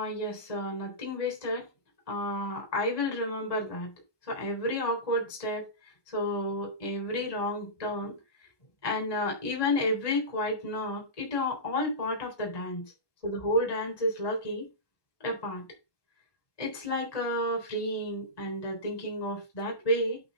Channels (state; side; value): late; right; 1.2 ms